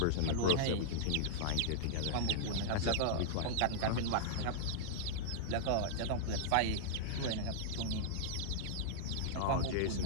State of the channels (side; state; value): both; different; correlation -0.02